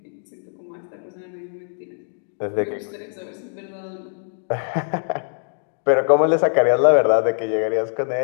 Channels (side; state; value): right; silent; digital silence